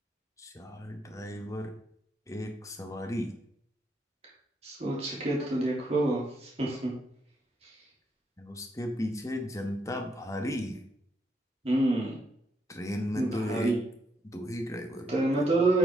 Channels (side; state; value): both; normal; correlation 0.76